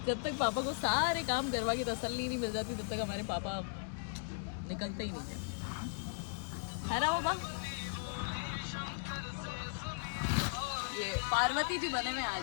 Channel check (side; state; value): right; silent; digital silence